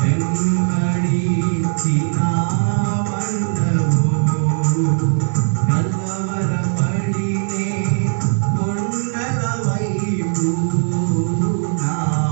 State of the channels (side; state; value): left; silent; 67 dB below the other